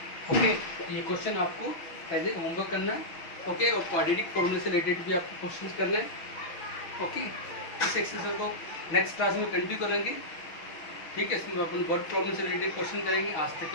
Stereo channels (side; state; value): right; late; 6.2 ms